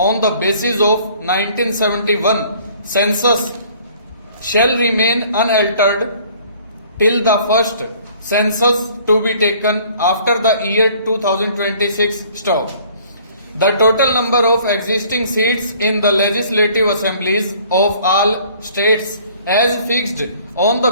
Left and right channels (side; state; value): both; inverted; correlation -0.55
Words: the basis of 1971 census shall remain unaltered till the first census to be taken after the year 2026. Stop. The total number of existing seats in the legislative assemblies of all states as fixed on the